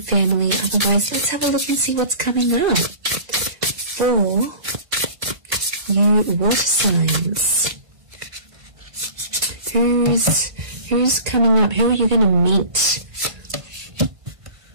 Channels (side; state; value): left; late; 1.5 ms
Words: family. Otherwise, let's have a look and see what's coming up for you water signs. Who's coming up? Who are you going to meet?